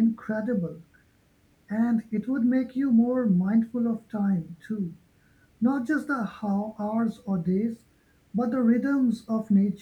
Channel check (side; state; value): both; identical; correlation 1.00